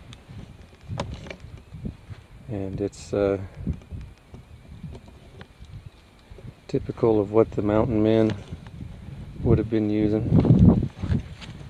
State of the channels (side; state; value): both; identical; correlation 1.00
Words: and it's typical of what the mountain men would have been using.